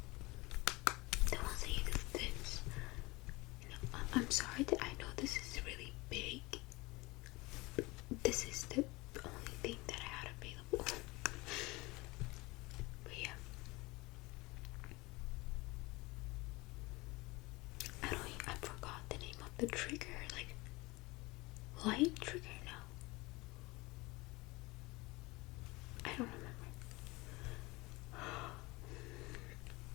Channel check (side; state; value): right; quieter; 23.0 dB